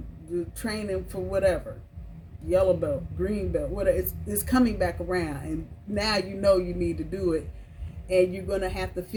the training for whatever. Yellow belt, green belt, whatever. It's coming back around. And now you know you need to do it. And you're going to have to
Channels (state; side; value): identical; both; correlation 1.00